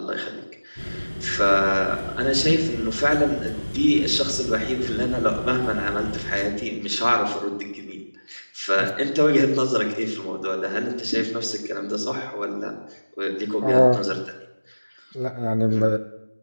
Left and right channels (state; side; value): inverted; both; correlation -1.00